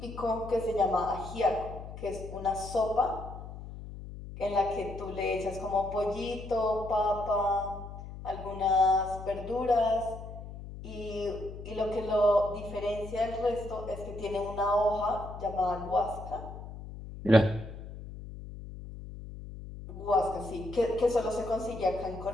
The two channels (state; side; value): noise; left; hum, 12 dB below the sound